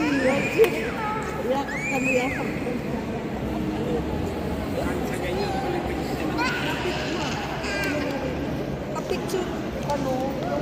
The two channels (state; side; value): identical; both; correlation 1.00